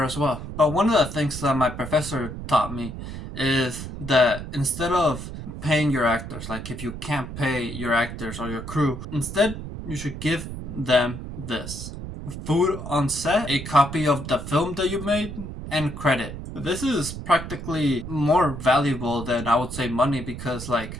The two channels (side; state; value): right; noise; rumble, 9 dB below the sound